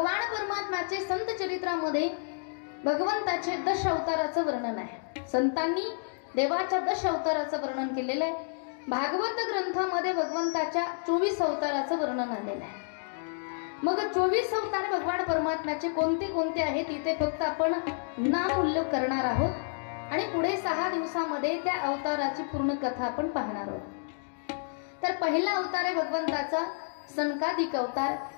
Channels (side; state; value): right; silent; digital silence